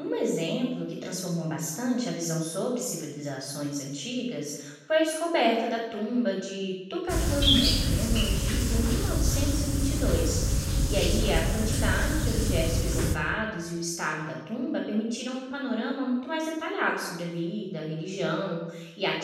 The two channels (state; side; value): identical; both; correlation 1.00